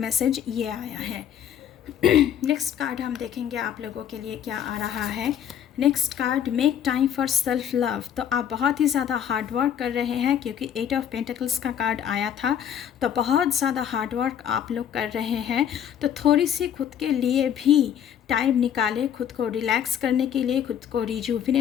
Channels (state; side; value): quieter; right; 9.3 dB